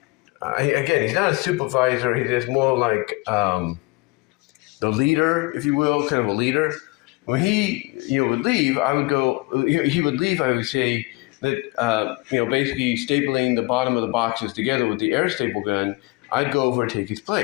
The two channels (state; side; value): quieter; right; 24.3 dB